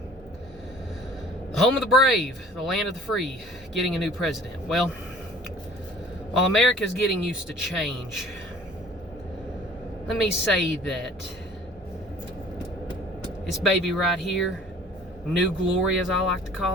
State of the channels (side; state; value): both; normal; correlation 0.50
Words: The home of the brave, the land of the free, getting a new president. Well, while America's getting used to change, let me say that this baby right here, New Glory as I like to